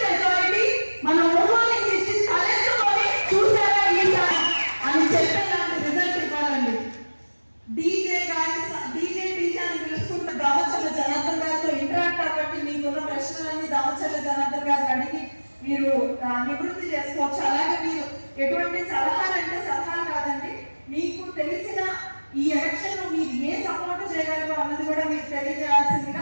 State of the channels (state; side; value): inverted; both; correlation -1.00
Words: మెజారిటీ మన ఒంగోలు ఇచ్చి తలెత్తుకొని చూసారా ఈసారి అని చెప్పేలాంటి రిజల్ట్ ఇవ్వాలండి. డీజే అని పిలుచుకుంటే దామచర్ల జనార్దన్ గారితో ఇంటరాక్ట్ అవ్వండి. మీకున్న ప్రశ్నలన్నీ దామచర్ల జనార్దన్ గారిని అడిగి మీరు నివృత్తి చేసుకోవచ్చు. అలాగే మీరు ఎటువంటి సలహాలు అంటే సలహాలు కాదండి, మీకు తెలిసిన ఈ ఎలక్షన్ లో మీరు ఏ సపోర్ట్ చేయగలరు అన్నది కూడా మీరు